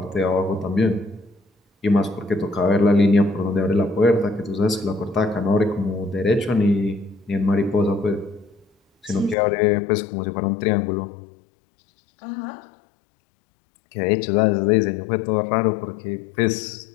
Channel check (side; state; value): right; drops out; at 9.3 s